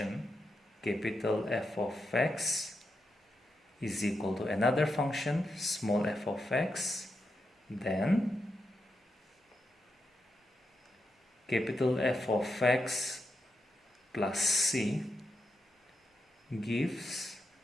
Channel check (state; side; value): normal; both; correlation 0.85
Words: capital F of x is equal to another function small f of x, then capital F of x plus c gives